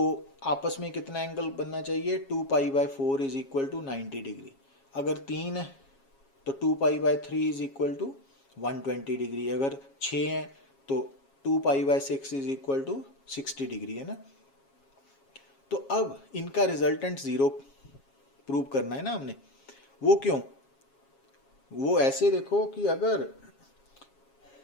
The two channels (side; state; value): right; late; 7.3 ms